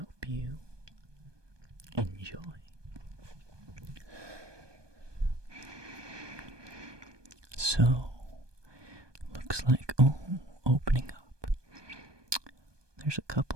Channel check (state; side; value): late; left; 1.2 ms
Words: you enjoy. So, looks like, opening up. There's a